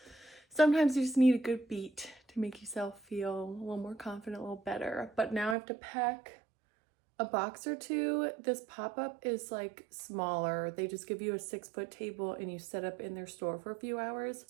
Sometimes you just need a good beat to make yourself feel a little more confident, a little better. But now I have to pack a box or 2. This pop-up is like smaller. They just give you a 6-foot table and you set up in their store for a few hours.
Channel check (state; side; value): drops out; left; at 5.6 s